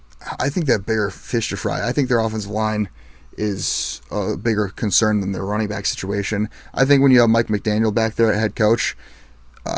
think they have bigger fish to fry. I think their offensive line is a bigger concern than their running back situation. I think when you have Mike McDaniel back there at head coach,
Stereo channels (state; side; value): identical; both; correlation 1.00